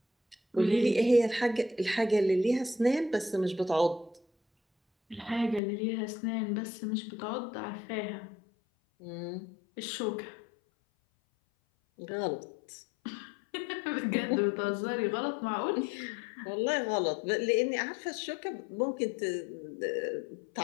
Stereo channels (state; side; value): drops out; right; at 5.6 s